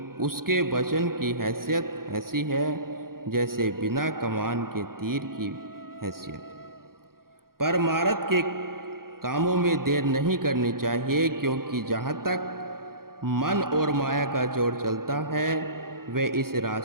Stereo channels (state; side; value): late; left; 0.92 ms